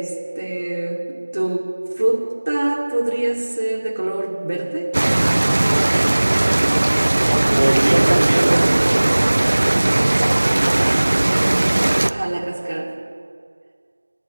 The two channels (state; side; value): inverted; both; correlation -1.00